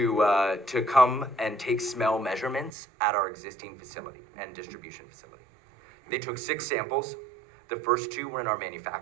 come and take smell measurements at our existing facility and distribution facility. They took 6 samples. The first 2 were in our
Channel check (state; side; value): drops out; left; at 2.8 s